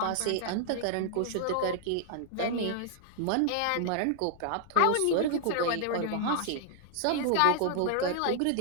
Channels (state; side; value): different; both; correlation -0.01